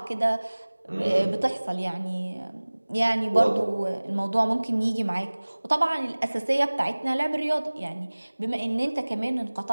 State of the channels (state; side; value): inverted; both; correlation -1.00